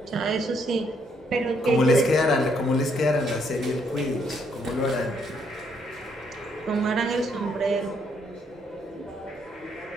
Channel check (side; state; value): both; normal; correlation 0.72